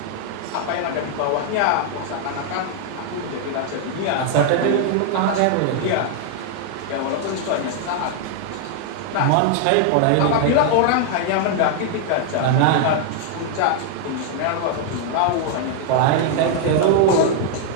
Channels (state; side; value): different; both; correlation 0.00